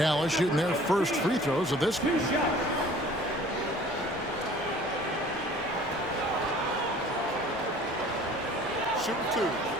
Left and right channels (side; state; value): both; normal; correlation 0.49